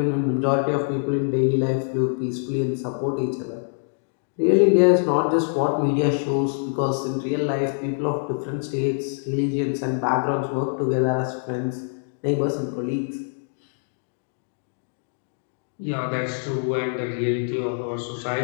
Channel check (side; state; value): right; silent; 62 dB below the other